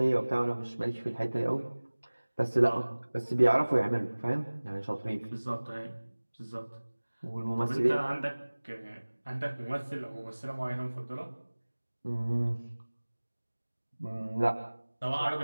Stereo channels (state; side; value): inverted; both; correlation -1.00